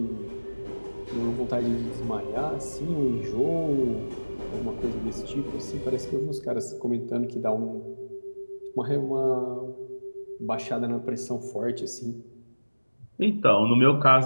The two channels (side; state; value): both; inverted; correlation -1.00